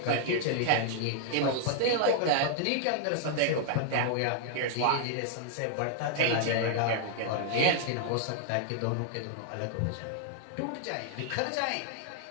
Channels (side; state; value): both; different; correlation -0.01